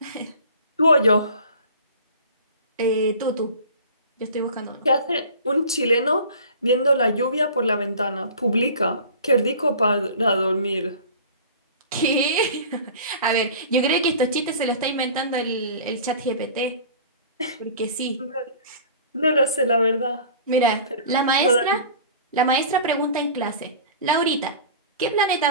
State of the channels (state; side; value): inverted; both; correlation -0.41